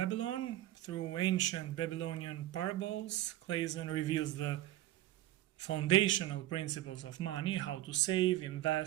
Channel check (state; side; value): quieter; left; 14.7 dB